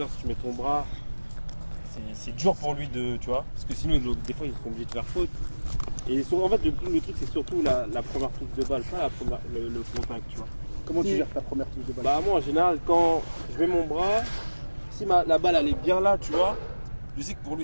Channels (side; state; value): both; inverted; correlation -1.00